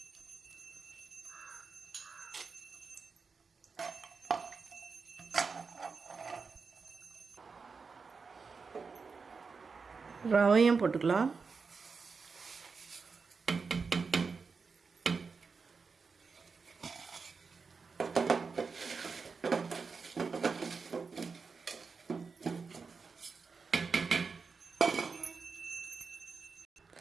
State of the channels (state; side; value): quieter; left; 4.9 dB